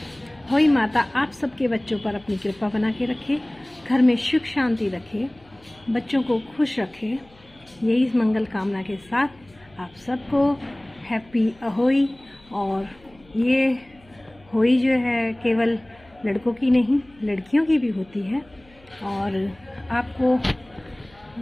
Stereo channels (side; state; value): left; noise; hum, 28 dB below the sound